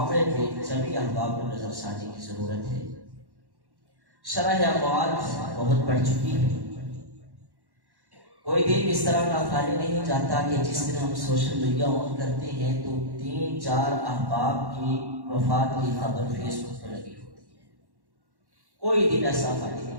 میں سبھی احباب کو نظر ثانی کی ضرورت ہے۔ شرح اموات بہت بڑھ چکی ہے، کوئی دن اس طرح کا خالی نہیں جاتا کہ جس دن ہم سوشل میڈیا آن کرتے ہیں تو 3-4 احباب کی وفات کی خبر فیس بک پر لگی ہوتی ہے۔ کوئی دن ایسا خالی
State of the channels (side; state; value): left; late; 1.1 ms